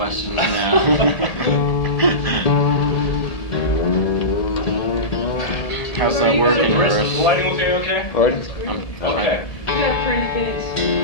now. How's that working, Chris? Chris? The lighting okay? Pardon? Okay. You got a pretty face.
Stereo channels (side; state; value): right; late; 1.7 ms